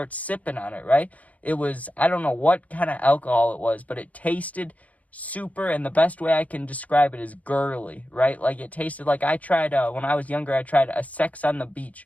sipping on it, right? It was, I don't know what kind of alcohol it was, but it tasted super, and the best way I can describe it is girly, right? Like, it tasted like I tried, when I was younger, I tried a Sex on the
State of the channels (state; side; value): late; right; 0.070 ms